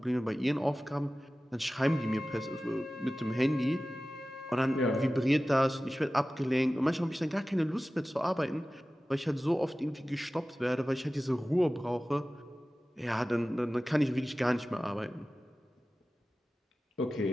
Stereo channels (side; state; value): both; normal; correlation 0.96